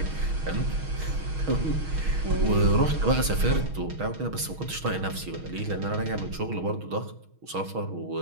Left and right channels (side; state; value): left; late; 6.3 ms